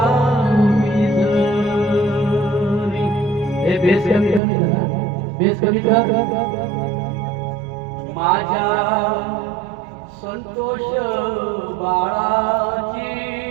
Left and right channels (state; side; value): drops out; left; at 4.4 s